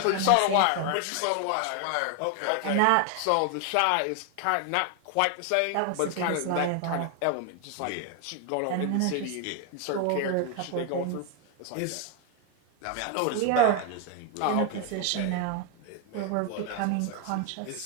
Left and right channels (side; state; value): both; different; correlation 0.01